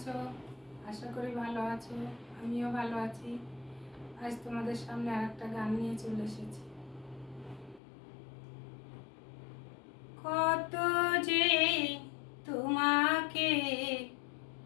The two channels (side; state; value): right; drops out; at 7.8 s